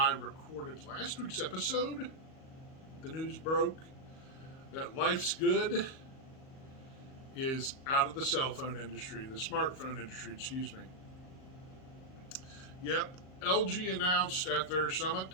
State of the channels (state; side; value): late; right; 38 ms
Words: recorded last week's episode. The news broke that Life's Good is out of the cell phone industry, the smartphone industry, excuse me. Yep, LG announced at their